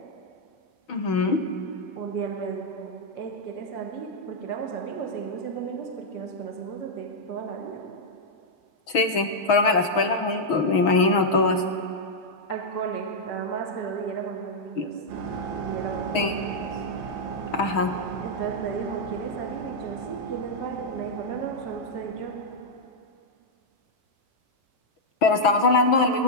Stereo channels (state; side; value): late; right; 6.2 ms